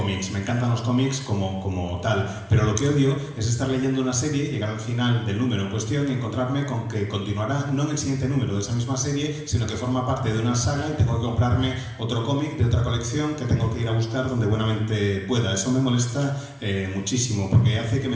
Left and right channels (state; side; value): identical; both; correlation 1.00